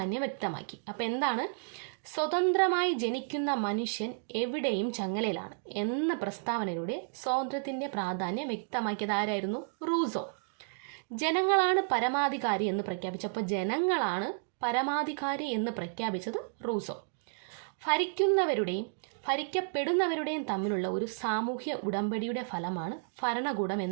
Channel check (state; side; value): silent; left; digital silence